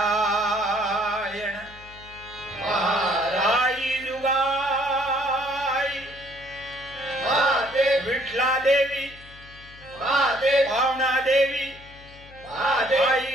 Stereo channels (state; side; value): noise; left; hum, 21 dB below the sound